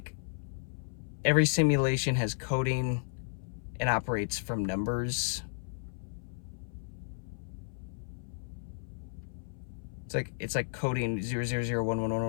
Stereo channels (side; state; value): right; silent; 55 dB below the other